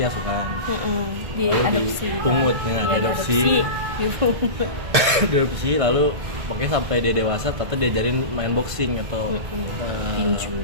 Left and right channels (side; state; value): left; late; 1.5 ms